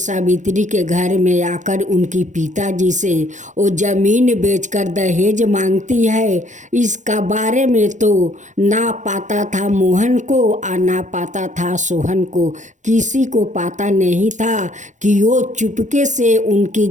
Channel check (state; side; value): late; left; 0.35 ms